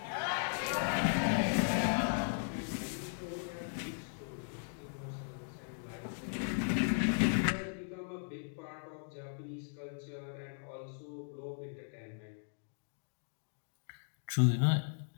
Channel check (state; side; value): silent; right; digital silence